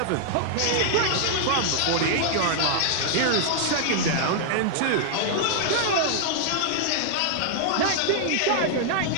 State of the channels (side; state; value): both; different; correlation -0.01